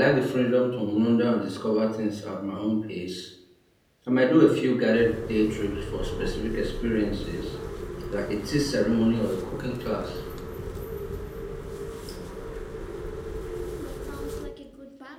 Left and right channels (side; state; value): both; identical; correlation 1.00